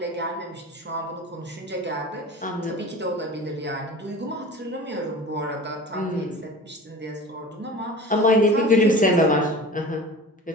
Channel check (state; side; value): normal; both; correlation 0.37